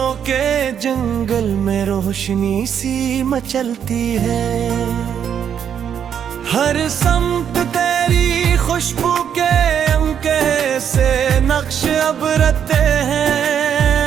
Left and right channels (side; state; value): left; quieter; 8.5 dB